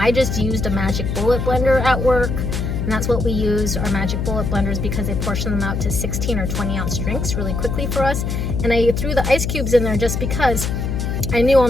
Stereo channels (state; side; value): noise; left; hum, 2 dB below the sound